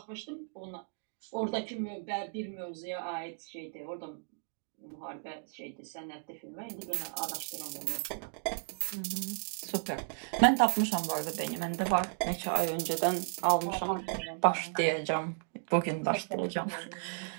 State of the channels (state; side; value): silent; left; 55 dB below the other